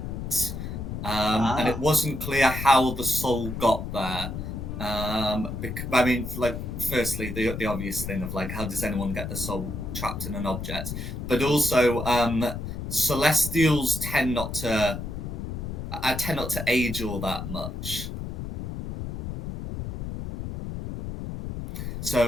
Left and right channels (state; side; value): noise; left; rumble, 6 dB below the sound